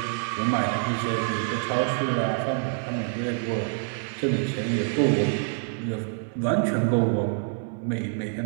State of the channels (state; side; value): silent; left; 61 dB below the other